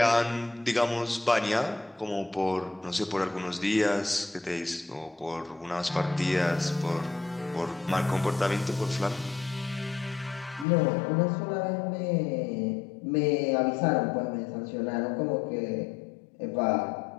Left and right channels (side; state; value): right; drops out; at 10.7 s